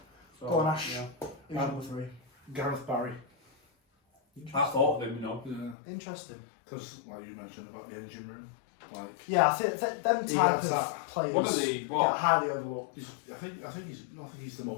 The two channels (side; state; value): right; drops out; at 5.8 s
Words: So, Go on, Ash. yeah. Who's number 3? Gareth Barry. I thought of him, you know. Yeah. Interesting. Because, like you mentioned about the engine room, like. Yeah, I think them He type gets of that. players One of the get what? highly overlooked. I think he's the